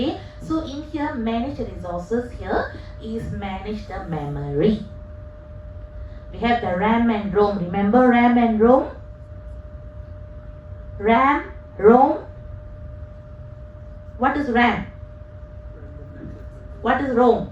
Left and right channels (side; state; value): both; identical; correlation 1.00